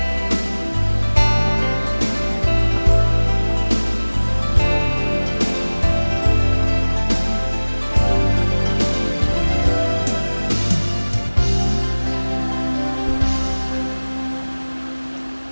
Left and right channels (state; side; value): inverted; both; correlation -1.00